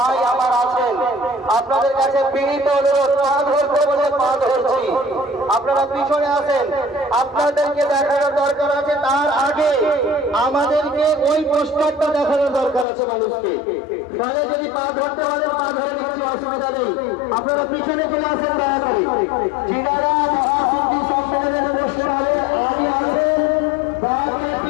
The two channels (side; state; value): right; drops out; at 12.9 s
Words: আমার আছেন আপনাদের কাছে বিনীত অনুরোধ, পা ধরতে বলে পা ধরছি, আপনারা পিছনে আসেন। আপনাদেরকে দেখানোর দরকার আছে, তার আগে আমাদেরকে ওই পোস্টারটা দেখানোর দরকার আছে মানুষকে। তাহলে যদি পা ধরতে পারেন পা ধরে নিচ্ছি, অসুবিধা নেই। আপনারা পিছনে চলে আসেন দয়া করে। যিনারা মহাসন্ধি সম্মেলনের পোস্টারে আগে আছেন বাকি